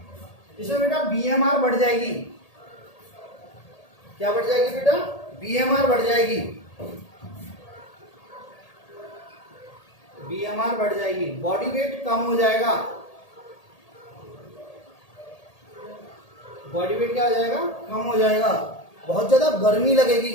इसमें बेटा बीएमआर बढ़ जाएगी। क्या बढ़ जाएगी बेटा? बीएमआर बढ़ जाएगी। बीएमआर बढ़ जाएगी, बॉडी वेट कम हो जाएगा। बॉडी वेट क्या हो जाएगा? कम हो जाएगा। बहुत ज्यादा गर्मी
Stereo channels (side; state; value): right; late; 1.8 ms